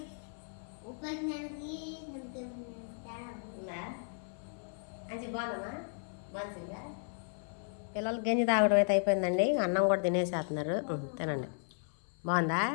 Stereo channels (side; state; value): right; silent; 54 dB below the other